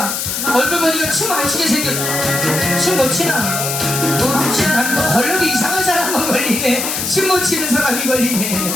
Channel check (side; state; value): left; noise; hiss, 2 dB below the sound